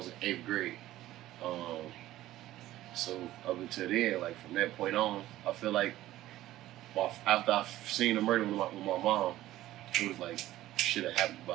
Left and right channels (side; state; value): left; quieter; 15.0 dB